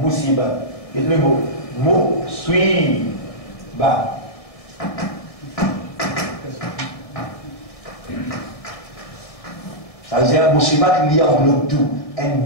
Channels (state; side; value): late; right; 1.7 ms